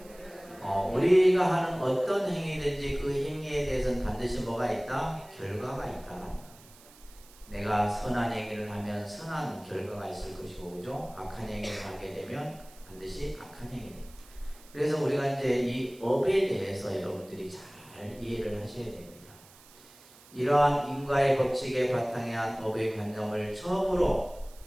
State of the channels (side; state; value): right; noise; hiss, 23 dB below the sound